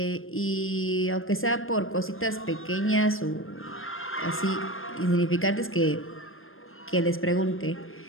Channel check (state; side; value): late; right; 0.60 ms